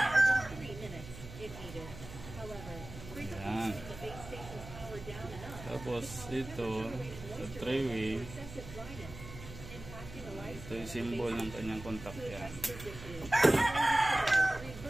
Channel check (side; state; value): right; noise; hum, 13 dB below the sound